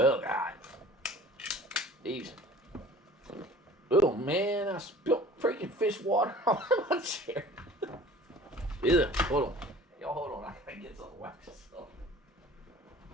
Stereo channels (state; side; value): normal; both; correlation 0.46